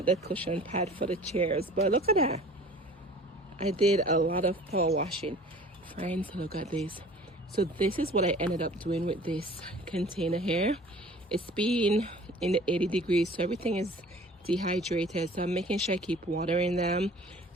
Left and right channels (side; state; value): both; normal; correlation 0.46